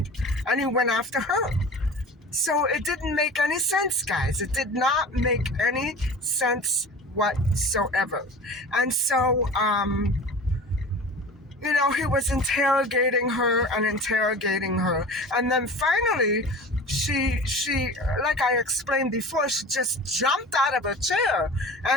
and he went after her. So it didn't make any sense, guys. It did not make any sense whatsoever. And so, he was interrogating her. And then finally, she, like I explained before, she just jumped out of her chair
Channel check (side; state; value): both; normal; correlation 0.37